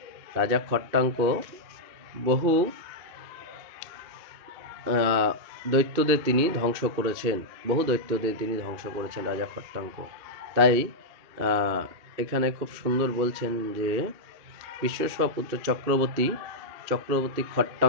রাজা খট্টাঙ্ক বহু দৈত্যদের তিনি ধ্বংস করেছেন, রাজা খট্টাঙ্ক। তাই এখানে খুব সুন্দর বলছেন যে বিশ্বস্বপুত্র চক্রবর্তী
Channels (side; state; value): left; late; 2.6 ms